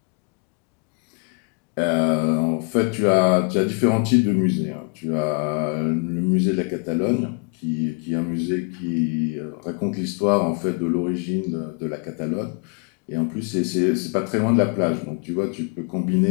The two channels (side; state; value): right; quieter; 35.4 dB